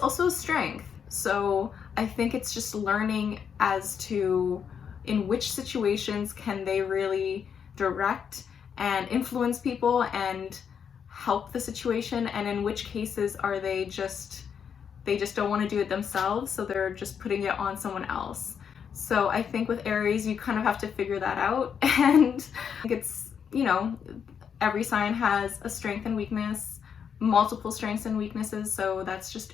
a strength. So I think it's just learning as to in which situations can they really direct and influence people and help the situation, and in which cases are they just don't want to do it themselves, so they're just putting it on someone else. So I think with Aries, you kind of have to figure that out. And it's, every sign has a strength and weakness, multiple strengths and weaknesses, so that's just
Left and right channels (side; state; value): right; quieter; 7.3 dB